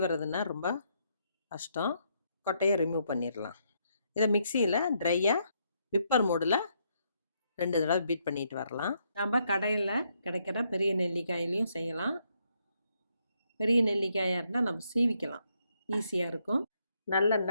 ரொம்ப கஷ்டம். கொட்டையை ரிமூவ் பண்ணிடலாம். இதை மிக்சியில் ட்ரையாக விப்பர் மோடில் 2 தடவை பீட் பண்ணிட்டு வரலாம். நம்ம கடையில் கிடைக்கிற பெரிய நெல்லிக்காயிலையும் செய்யலாம். பெரிய நெல்லிக்காயாக இருந்தால் நம்ம சீவிக்கலாம், ஈஸியாக இருக்கும்.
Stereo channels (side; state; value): both; inverted; correlation -0.76